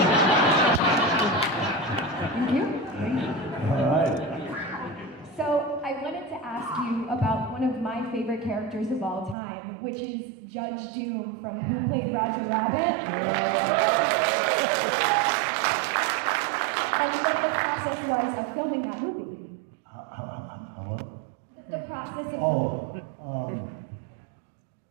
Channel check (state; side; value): drops out; left; at 9.3 s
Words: Thank you. All right. So I wanted to ask you about one of my favorite characters of all time, which is Judge Doom from Who Played Roger Rabbit? And what the process was of filming that movie. What? The process of filming.